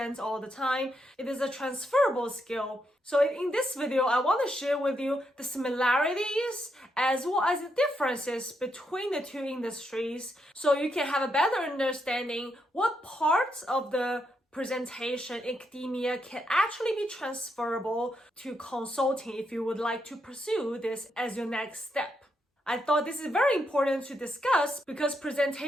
all the time, it is a transferable skill. So in this video, I want to share with you the similarities as well as the differences between the two industries so you can have a better understanding what parts of the presentation in academia can actually be transferable to consulting if you would like to pursue this as your next step. I thought this is very important to discuss because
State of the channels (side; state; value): both; normal; correlation 0.80